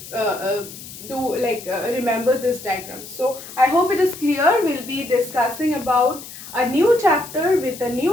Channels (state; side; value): noise; left; hiss, 14 dB below the sound